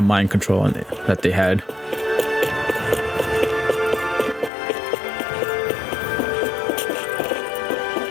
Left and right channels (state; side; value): drops out; right; at 4.5 s